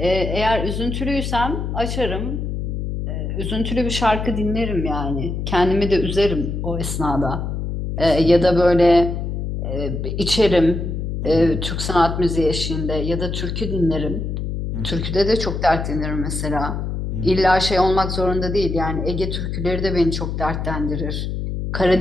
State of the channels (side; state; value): left; noise; hum, 3 dB below the sound